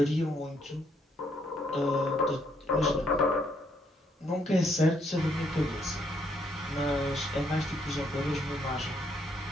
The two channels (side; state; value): both; normal; correlation 0.72